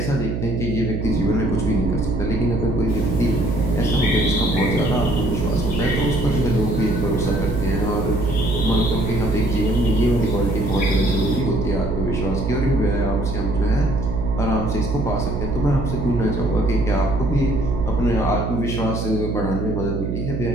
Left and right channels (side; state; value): right; noise; hum, 3 dB below the sound